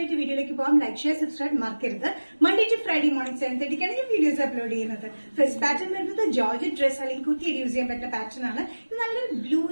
വീഡിയോയിലേക്ക് പോകാം. ലൈക്ക്, ഷെയർ, സബ്സ്ക്രൈബ് മറക്കരുത്. മൺഡേ ടു ഫ്രൈഡേ മോർണിംഗ് 7:30 ഞാൻ വീഡിയോസ് അപ്ലോഡ് ചെയ്യുന്നത്. ഫസ്റ്റ് പാറ്റേൺ വരുന്നത് ജോർജറ്റ് ഡ്രസ് അല്ലെങ്കിൽ കുത്തിയിട്ട് യൂസ് ചെയ്യാൻ പറ്റുന്ന പാറ്റേൺ ആണ്. ഇത് നല്ലൊരു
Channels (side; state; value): both; inverted; correlation -1.00